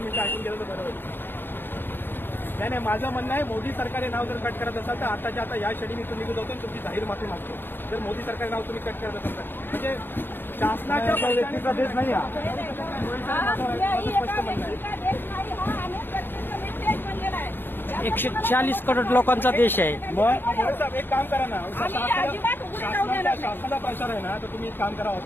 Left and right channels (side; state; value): right; late; 0.099 ms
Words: मिनिटं ऐकून गेलं तर बरं होईल. नाही माझं म्हणणं आहे मोदी सरकारी नाव जर कट करत असाल तर आताच्या आता या क्षणी मी तुम्ही निघून जातो तुमची जाहीर माफी मागतो. जर मोदी सरकारी नाव तुम्ही कट करत असाल तर म्हणजे शासनाच्या व्यक्तीचा देश नाही हा. स्पष्ट म्हणणं आहे. 140 करोड लोकांचा देश आहे. मग साहेब एक काम करा ना, आम्ही अजिबात उघडे जाऊ देणार नाही. शासनाचा प्रचार आहे ना, तर तुम्ही एक काम करा,